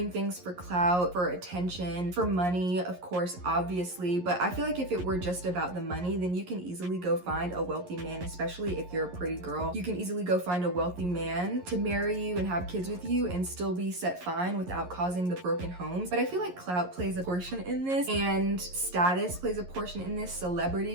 things for clout, for attention, for money, of course, obviously. But I feel like if it were just about the money, then you can easily go find a wealthy man, especially if you're a pretty girl. You can easily go find a wealthy man to marry you and have kids with you and still be set fine without causing the broken homes. But I feel like clout plays a portion in this, and status plays a portion in this,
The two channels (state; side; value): late; left; 11 ms